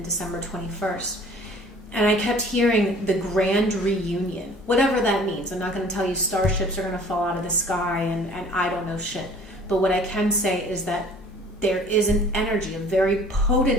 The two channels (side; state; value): both; normal; correlation 0.50